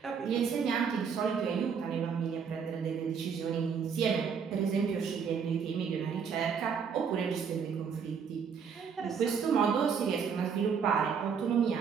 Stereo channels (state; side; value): quieter; left; 6.5 dB